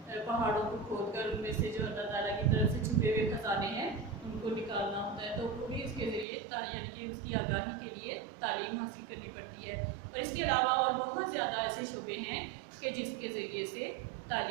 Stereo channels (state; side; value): drops out; left; at 6.2 s